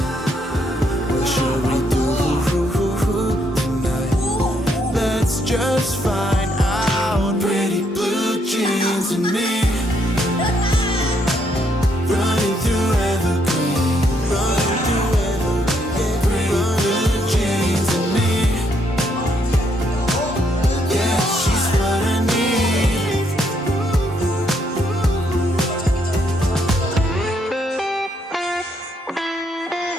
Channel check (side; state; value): both; normal; correlation 0.73